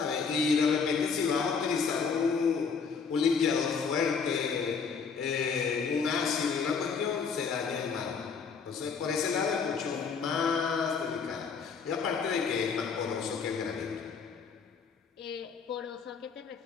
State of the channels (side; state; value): right; quieter; 5.7 dB